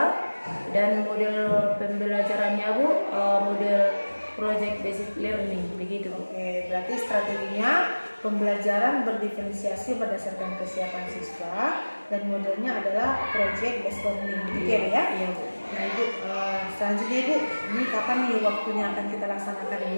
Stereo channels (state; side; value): inverted; both; correlation -1.00